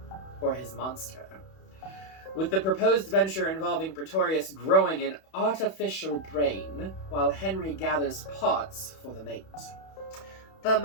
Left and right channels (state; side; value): late; right; 31 ms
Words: for his monster. With the proposed venture involving Pretorius growing an artificial brain, while Henry gathers pots for the mate. The